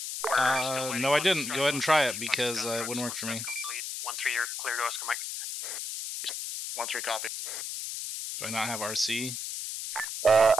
No, I didn't. Go ahead and try it because it wouldn't work for me. 1-3, you're clear to Oscar Mike. 1-3 copy. Do I not have RC?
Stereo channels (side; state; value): left; noise; hiss, 5 dB below the sound